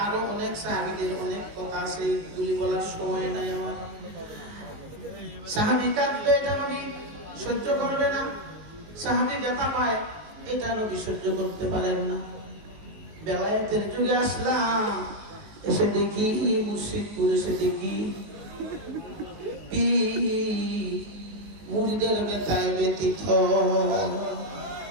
আরো অনেক সাহাবীদের অনেক কথা আছে, এগুলি বলার সময় নাই আমার। সাহাবী কাঁদবে, এটা নবী সহ্য করবে না। সাহাবী ব্যথা পায়, এটা নবী সহ্য করতে পারেন না। বেলায়েতের যুগে আসলাম, এসে দেখি মুর্শিদপুর, এসে দেখি মুরিদের ব্যথায় ব্যথিত।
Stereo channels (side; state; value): left; late; 19 ms